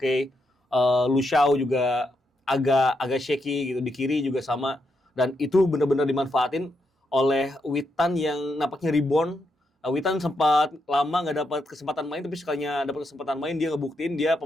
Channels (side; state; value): both; normal; correlation 0.81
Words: Lushao juga agak shaky gitu, di kiri juga sama, dan itu benar-benar dimanfaatin oleh Witan yang nampaknya rebound. Witan sempat lama nggak dapat kesempatan main, tapi sekalinya dapat kesempatan main dia ngebuktiin dia